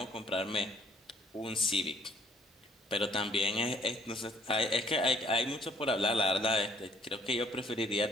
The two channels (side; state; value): both; normal; correlation 0.62